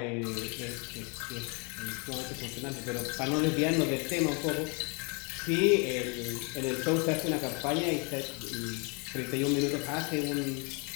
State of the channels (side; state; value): right; quieter; 33.4 dB